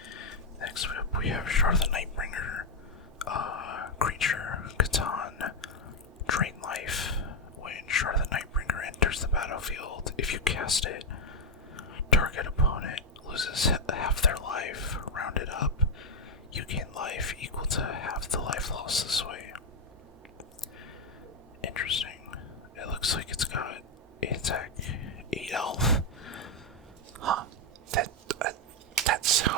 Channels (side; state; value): both; normal; correlation 0.02